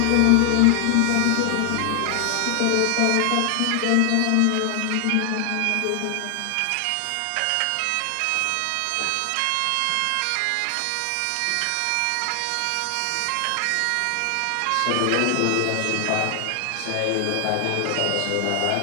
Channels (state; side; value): different; both; correlation 0.00